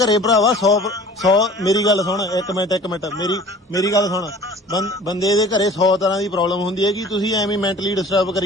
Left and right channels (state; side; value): normal; both; correlation 0.46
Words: ਭਰਾਵਾ 100 ਮੇਰੀ ਗੱਲ ਸੁਣ ਇੱਕ ਮਿੰਟ ਮੇਰੀ ਗੱਲ ਸੁਣ ਬੰਦੇ ਦੇ ਘਰੇ 100 ਤਰ੍ਹਾਂ ਦੀ ਪ੍ਰੋਬਲਮ ਹੁੰਦੀ ਹੈ ਕਿ ਤੁਸੀਂ ਐਵੇਂ ਮੈਂਟਲੀ ਡਿਸਟਰਬ